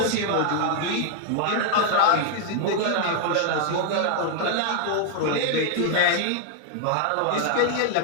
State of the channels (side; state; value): both; different; correlation 0.00